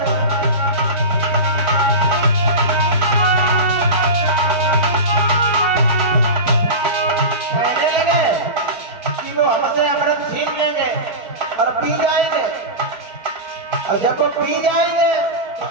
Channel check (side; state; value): left; late; 4.5 ms